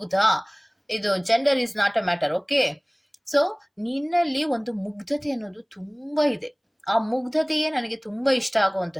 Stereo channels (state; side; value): identical; both; correlation 1.00